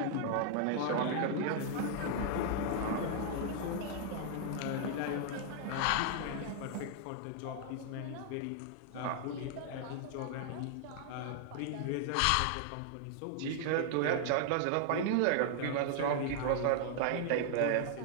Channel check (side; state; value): both; different; correlation 0.00